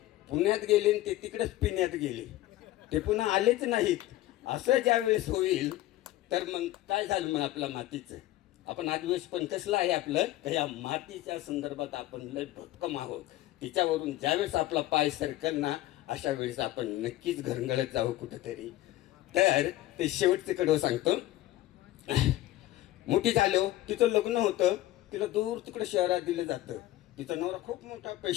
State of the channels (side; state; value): right; quieter; 15.6 dB